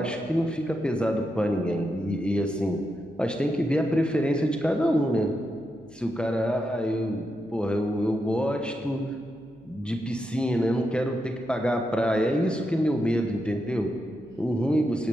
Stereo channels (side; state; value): right; noise; hum, 29 dB below the sound